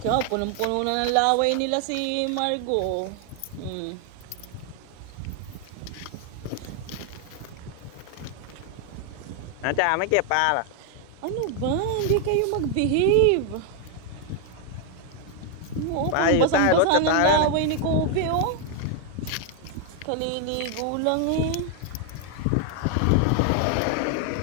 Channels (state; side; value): different; both; correlation 0.01